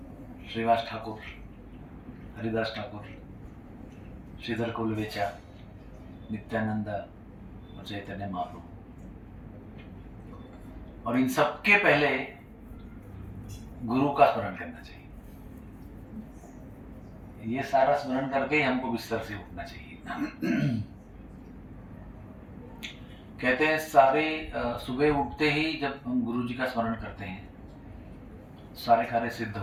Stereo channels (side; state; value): both; identical; correlation 1.00